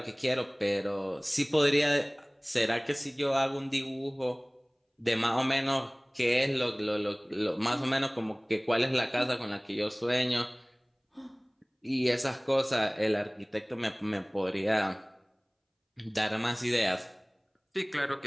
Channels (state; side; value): identical; both; correlation 1.00